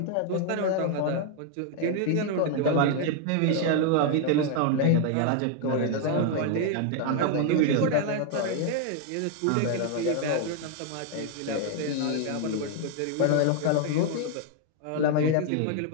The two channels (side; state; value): both; different; correlation 0.00